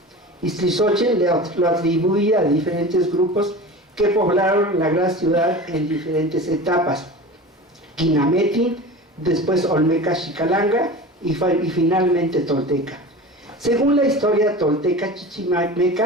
Ixtlilxóchitl lo atribuye a diferentes grupos que poblaron la gran ciudad en diferentes etapas: Quinametin, después Olmeca Xicalanga y finalmente Tolteca. Según la historia tolteca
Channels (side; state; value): both; normal; correlation 0.34